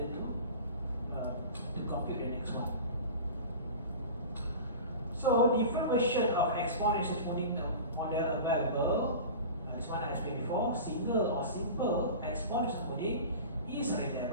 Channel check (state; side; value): inverted; both; correlation -0.34